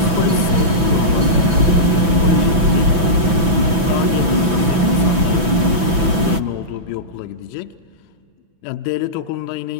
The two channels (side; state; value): left; late; 6.0 ms